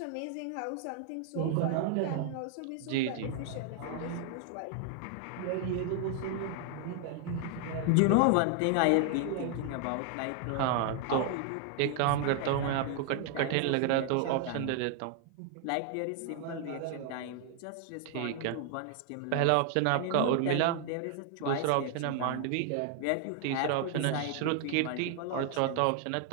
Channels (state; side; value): different; both; correlation 0.00